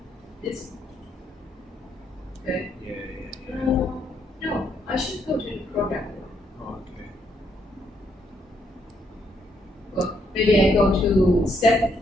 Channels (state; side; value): normal; both; correlation 0.74